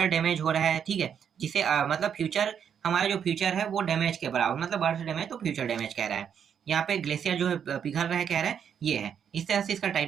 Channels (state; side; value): quieter; left; 8.0 dB